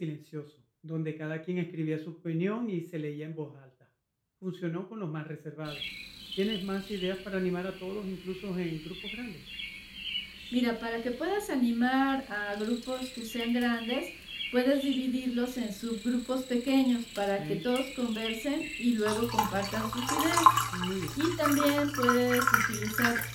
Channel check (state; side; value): identical; both; correlation 1.00